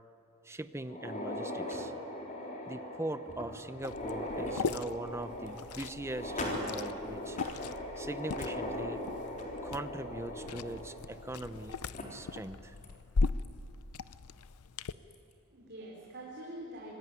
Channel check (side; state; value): both; normal; correlation 0.43